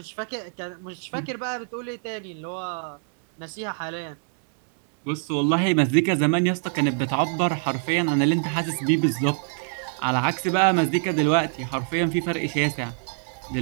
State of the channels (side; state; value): left; silent; 62 dB below the other